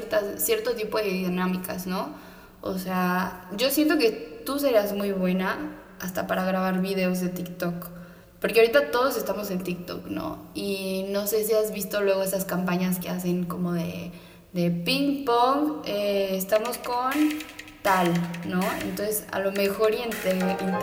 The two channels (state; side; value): identical; both; correlation 1.00